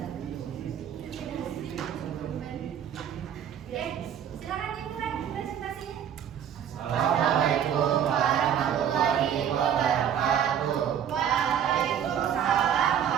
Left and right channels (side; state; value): left; quieter; 9.1 dB